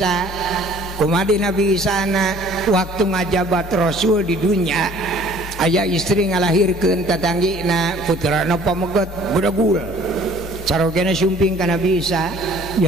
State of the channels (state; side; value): normal; both; correlation 0.53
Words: Kumadi Nabi Isa na waktu ngajabat Rasul di dunia aya istri ngalahirkeun tatanggina putrana pamegot budagul carogena sumping ka Nabi Isa